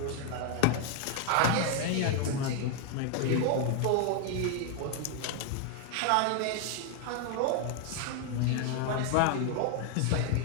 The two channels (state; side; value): different; both; correlation 0.00